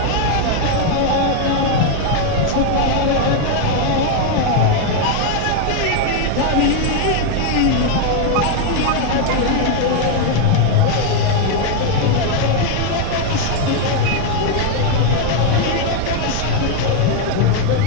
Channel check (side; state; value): both; different; correlation 0.01